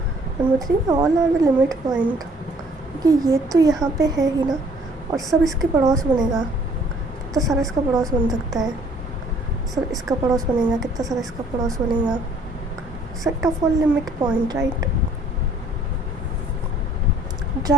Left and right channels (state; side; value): normal; both; correlation 0.58